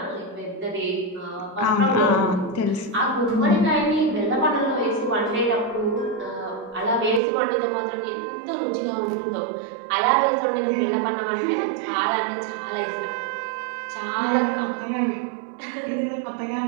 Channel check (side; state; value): left; drops out; at 7.2 s